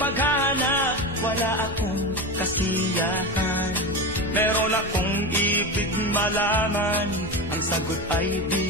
paghanap, wala akong kasiyahan. Meron akong ibig malaman, ang sagot ay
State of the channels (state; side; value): noise; right; rumble, 13 dB below the sound